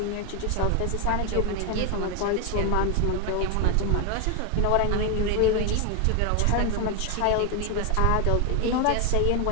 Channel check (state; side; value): different; both; correlation 0.01